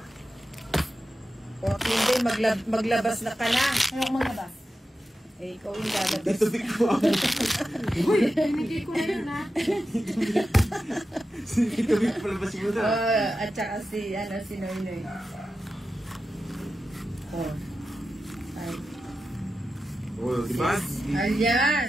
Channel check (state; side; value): normal; both; correlation 0.92